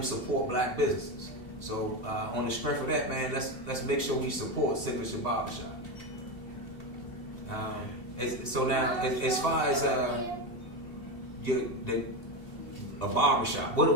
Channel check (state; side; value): late; right; 2.7 ms